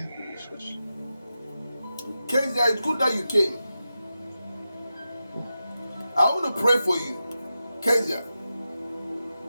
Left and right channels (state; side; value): inverted; both; correlation -0.91